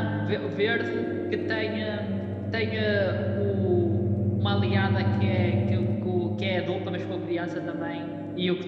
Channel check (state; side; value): identical; both; correlation 1.00